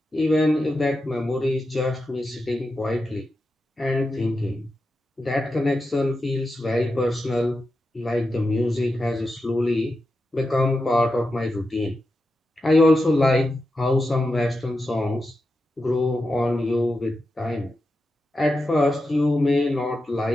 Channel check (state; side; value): normal; both; correlation 0.89